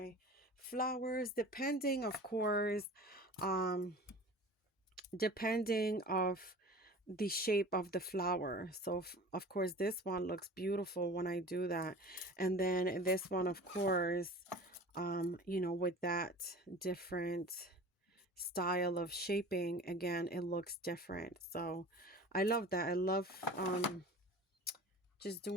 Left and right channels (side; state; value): both; normal; correlation 0.39